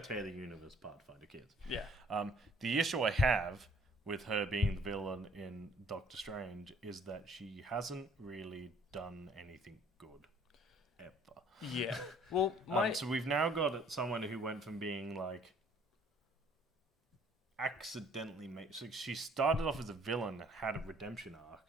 the universe apart to find her kids. Yeah. The issue I have with her being the villain in Doctor Strange is that she hasn't really done anything good ever. Yeah. Well, so we've now got someone who went from being accidentally made. So she started off as a villain and had a redemption arc.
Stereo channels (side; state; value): both; normal; correlation 0.58